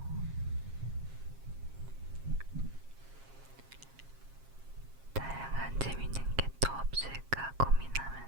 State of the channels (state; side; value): late; left; 7.4 ms